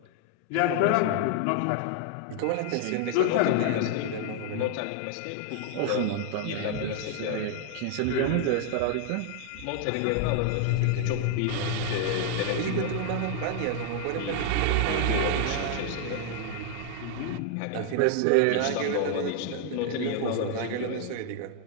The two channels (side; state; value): both; different; correlation 0.00